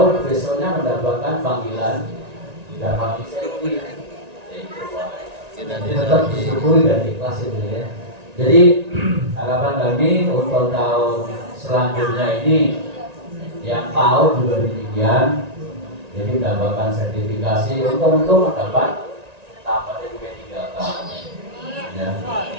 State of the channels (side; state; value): left; late; 1.9 ms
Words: besoknya mendapatkan panggilan dapat insentif. Jadi tetap disyukuri dan ikhlas itu ya. Jadi harapan kami untuk tahun selanjutnya ini yang tahu juga demikian. Jadi mendapatkan sertifikasi untuk mendapat tambah dari P3K. Ya.